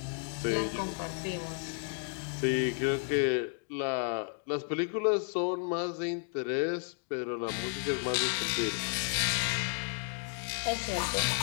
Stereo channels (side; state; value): right; silent; 56 dB below the other